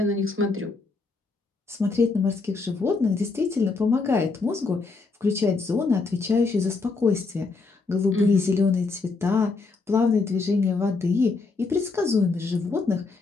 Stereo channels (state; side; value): quieter; right; 4.0 dB